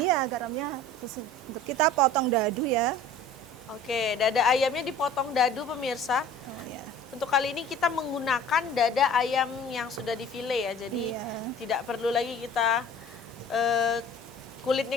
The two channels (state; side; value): normal; both; correlation 0.45